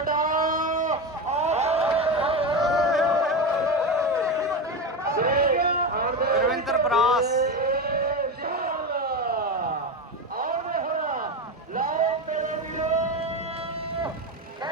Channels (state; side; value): normal; both; correlation 0.18